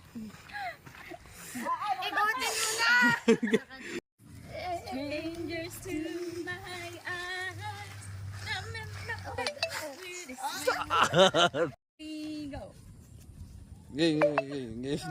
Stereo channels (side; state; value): both; identical; correlation 1.00